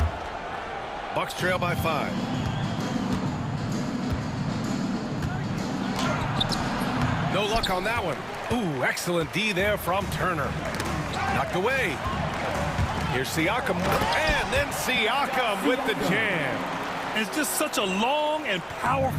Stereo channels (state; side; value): identical; both; correlation 1.00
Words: Bucks trail by 5. No luck on that one. Ooh, excellent D there from Turner. Knocked away. Here's Siakam. And then Siakam with the jam. And it's just such a long and